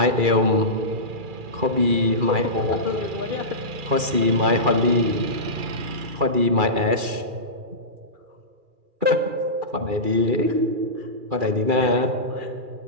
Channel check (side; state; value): left; late; 2.4 ms